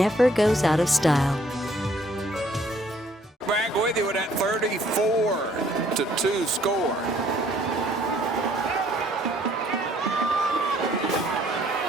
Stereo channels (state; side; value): normal; both; correlation 0.63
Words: goes out of style. Back with you with that 34-2 score.